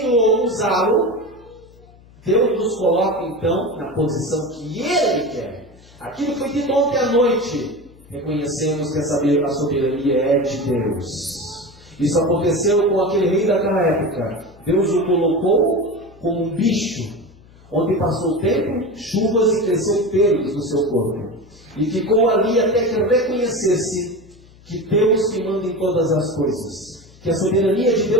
usá-lo, Deus nos coloca então na posição que Ele quer. Aquilo que foi dito ontem à noite, reconhecemos que a soberania é de Deus. Isso aconteceu com aquele rei daquela época. Deus o colocou como um bicho, onde passou o tempo, chuvas e cresceu pelos no seu corpo. E ficou ali até que reconhecesse que Deus que manda em todas as coisas. Que a soberania de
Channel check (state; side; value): noise; left; hum, 25 dB below the sound